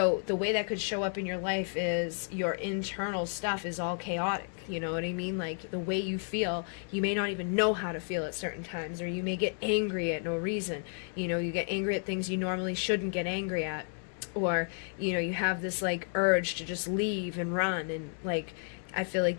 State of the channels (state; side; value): silent; right; 56 dB below the other